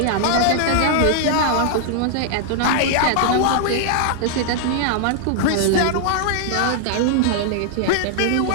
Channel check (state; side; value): different; both; correlation -0.01